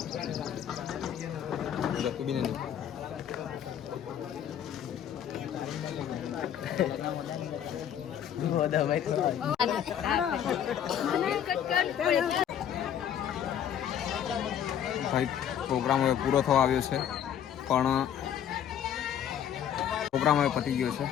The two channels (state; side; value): quieter; right; 9.5 dB